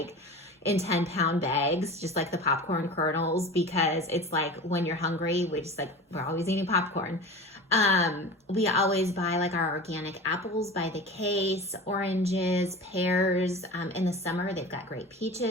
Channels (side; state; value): both; normal; correlation 0.34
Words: in 10-pound bags, just like the popcorn kernels, because it's like when you're hungry, we're always eating popcorn. We always buy like our organic apples by the case, oranges, pears. In the summer, they've got great